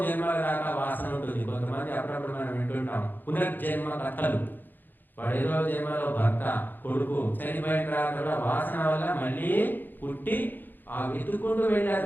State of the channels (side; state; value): right; late; 0.090 ms